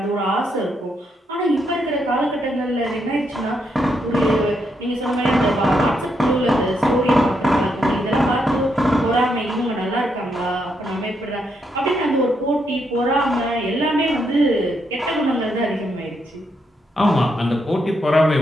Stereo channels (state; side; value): normal; both; correlation 0.79